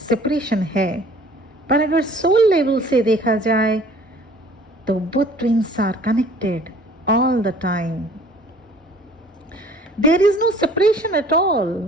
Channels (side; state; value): both; normal; correlation 0.51